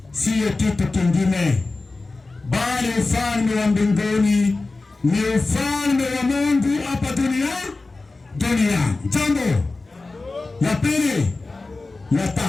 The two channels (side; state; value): right; quieter; 3.4 dB